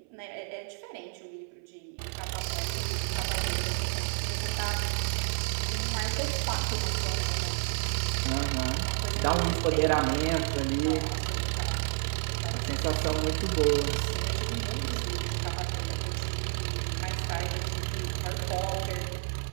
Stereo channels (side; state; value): left; silent; 58 dB below the other